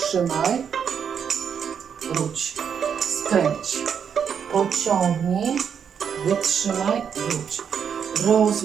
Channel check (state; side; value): quieter; left; 7.5 dB